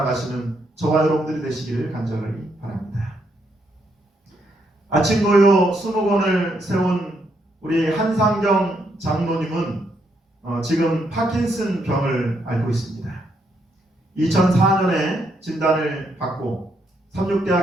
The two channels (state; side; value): normal; both; correlation 0.76